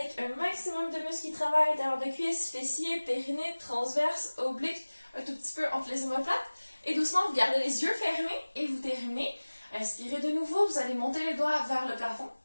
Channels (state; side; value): inverted; both; correlation -1.00